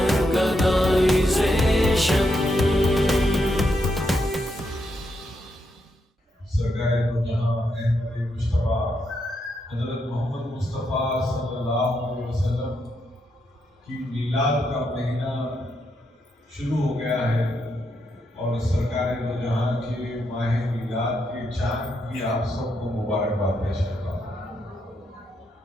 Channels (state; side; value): normal; both; correlation 0.80